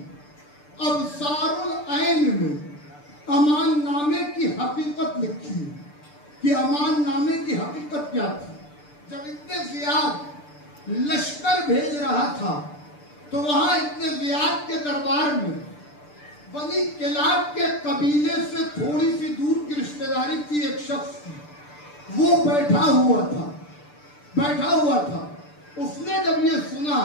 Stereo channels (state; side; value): late; right; 6.8 ms